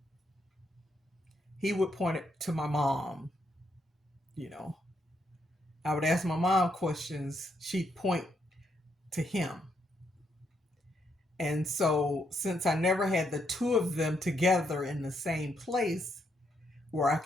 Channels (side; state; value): both; normal; correlation 0.77